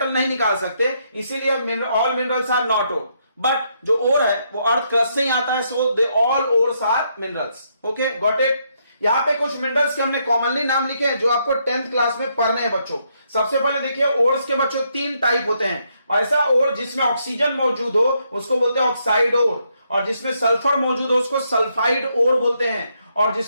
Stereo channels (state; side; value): inverted; both; correlation -0.76